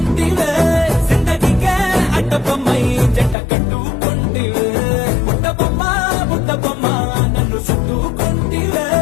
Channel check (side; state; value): right; drops out; at 3.4 s